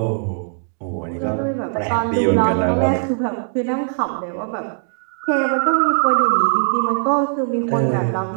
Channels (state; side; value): silent; left; 65 dB below the other